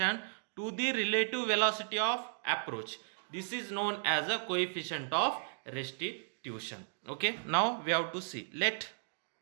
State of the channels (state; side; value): silent; left; digital silence